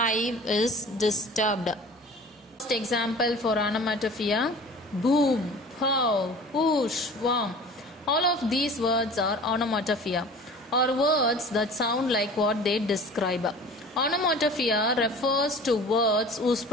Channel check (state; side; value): normal; both; correlation 0.42